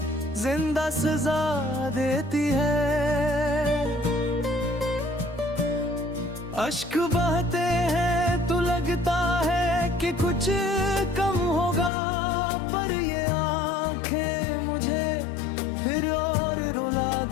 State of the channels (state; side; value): drops out; right; at 11.9 s